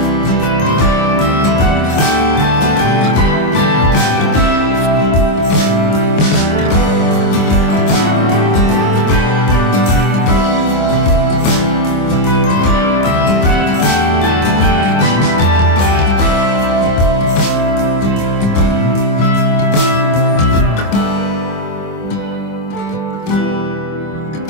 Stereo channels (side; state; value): right; late; 26 ms